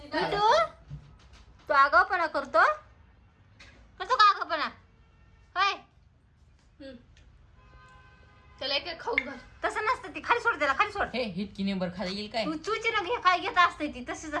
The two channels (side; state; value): both; identical; correlation 1.00